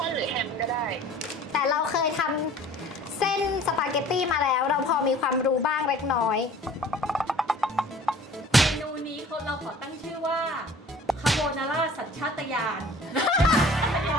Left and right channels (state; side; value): normal; both; correlation 0.48